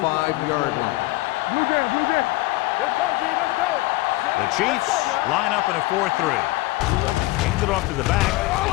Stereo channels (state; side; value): quieter; right; 19.8 dB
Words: line. Blue Jay, Blue Jay. Let's go, B. Let's go. The Chiefs line up in a 4-3. Hand it off to the back.